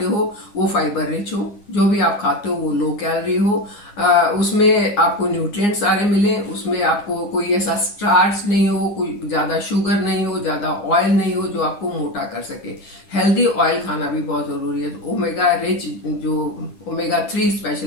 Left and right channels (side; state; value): right; late; 9.7 ms